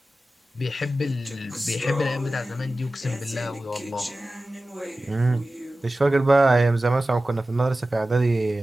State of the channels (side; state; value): both; normal; correlation 0.95